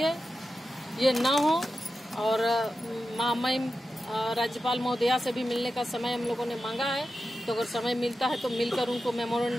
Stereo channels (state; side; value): normal; both; correlation 0.92